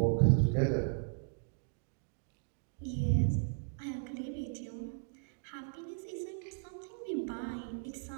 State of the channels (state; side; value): silent; left; digital silence